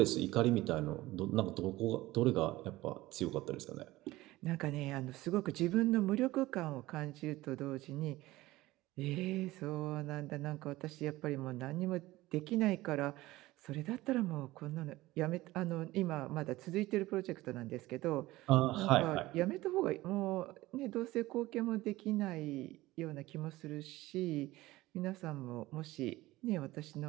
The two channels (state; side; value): quieter; left; 18.1 dB